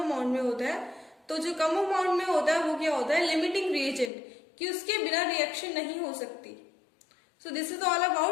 में होता है। तो जो कम अमाउंट में होता है वो क्या होता है, लिमिटिंग रिएजेंट, कि उसके बिना रिएक्शन नहीं हो सकती। So this is all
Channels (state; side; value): drops out; right; at 4.1 s